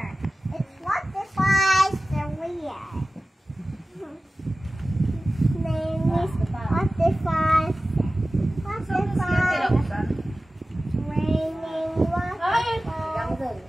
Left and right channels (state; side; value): normal; both; correlation 0.96